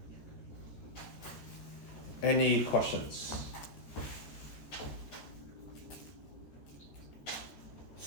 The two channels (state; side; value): late; right; 13 ms